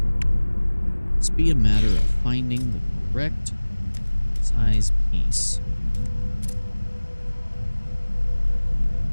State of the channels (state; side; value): inverted; both; correlation -1.00